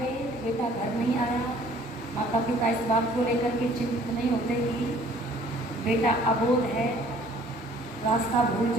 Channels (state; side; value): normal; both; correlation 0.56